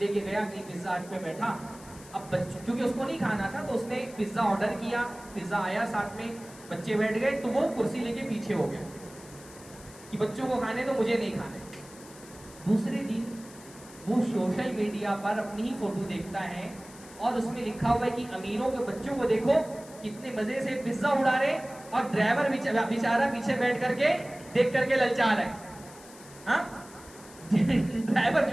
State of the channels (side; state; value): left; noise; hiss, 20 dB below the sound